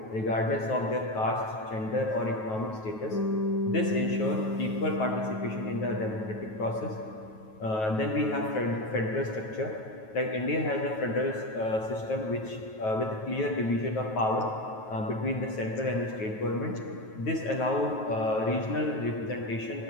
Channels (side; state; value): right; late; 9.3 ms